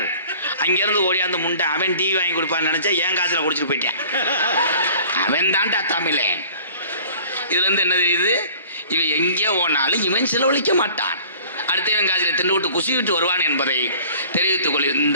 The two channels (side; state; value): both; inverted; correlation -0.48